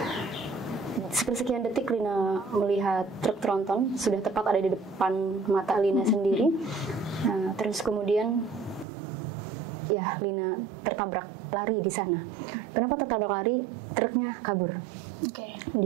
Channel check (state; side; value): drops out; left; at 8.8 s